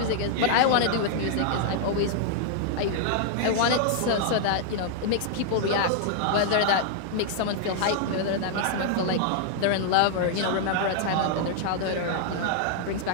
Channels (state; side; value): different; both; correlation 0.00